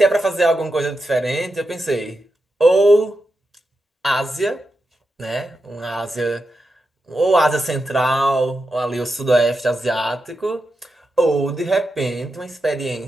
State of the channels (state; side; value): normal; both; correlation 0.88